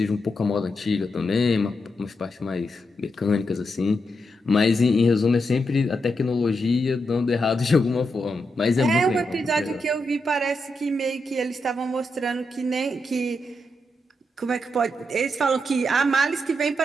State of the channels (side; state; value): both; normal; correlation 0.84